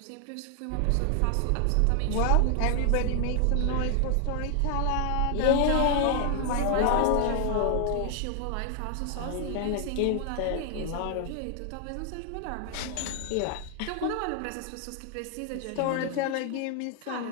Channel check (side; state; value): both; different; correlation 0.00